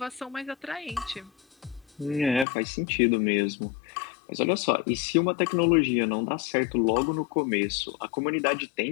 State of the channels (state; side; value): drops out; right; at 2.5 s